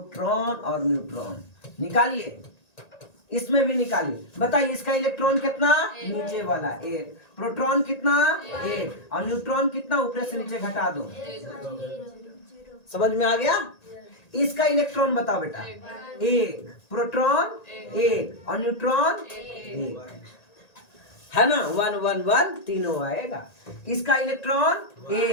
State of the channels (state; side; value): late; right; 1.8 ms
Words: और न्यूट्रॉन निकालिए। इसमें भी निकालिए। बताइए इसका इलेक्ट्रॉन कितना? नीचे वाला 1। प्रोटॉन कितना? 1। और न्यूट्रॉन कितना? ऊपर से नीचे घटा दो। समझ में आ गया? इसका इलेक्ट्रॉन बताओ बेटा। 1, प्रोटॉन 1 और न्यूट्रॉन 1, है ना। 1 1 1 तीनों आएगा। इसका इलेक्ट्रॉन